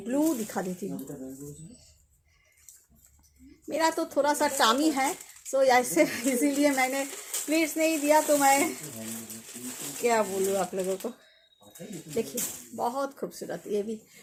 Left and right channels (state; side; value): identical; both; correlation 1.00